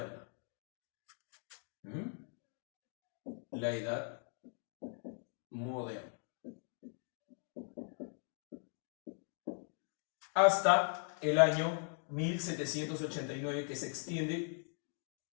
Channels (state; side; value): silent; right; 51 dB below the other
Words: La Edad Moderna. Hasta el año 1789, que se extiende